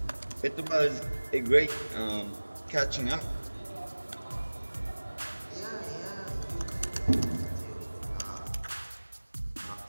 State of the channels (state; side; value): inverted; both; correlation -1.00